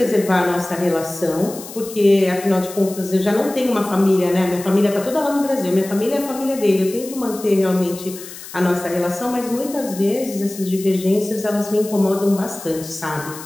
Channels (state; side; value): noise; left; hiss, 14 dB below the sound